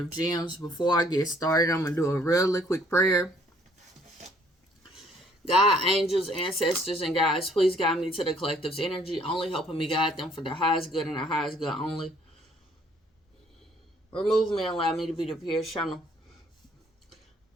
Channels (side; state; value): both; normal; correlation 0.62